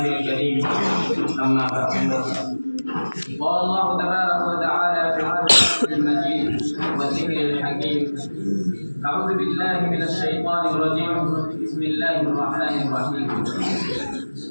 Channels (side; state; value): both; inverted; correlation -1.00